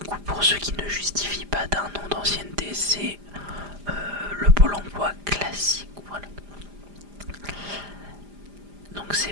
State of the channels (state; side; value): late; left; 5.0 ms